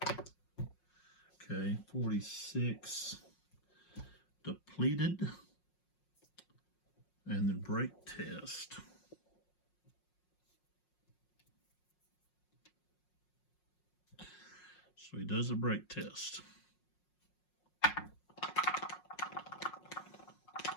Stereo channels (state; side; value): late; right; 5.5 ms